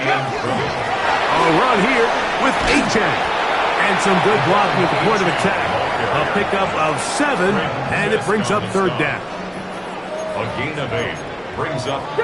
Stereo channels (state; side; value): identical; both; correlation 1.00